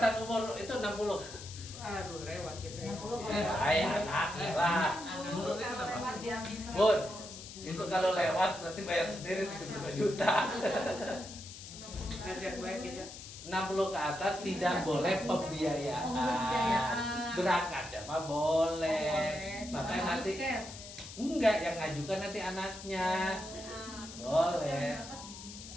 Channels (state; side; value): noise; left; hiss, 13 dB below the sound